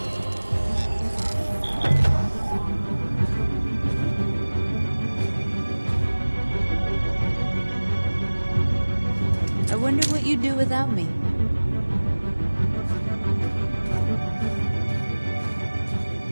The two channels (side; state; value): both; inverted; correlation -1.00